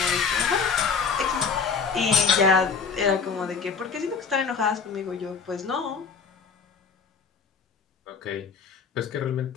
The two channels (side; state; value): right; quieter; 5.7 dB